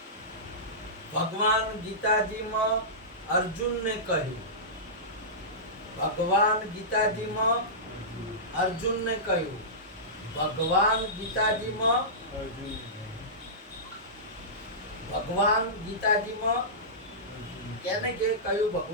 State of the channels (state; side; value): normal; both; correlation -0.18